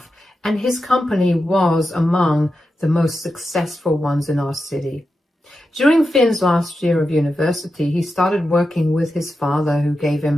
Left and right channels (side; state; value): both; normal; correlation 0.89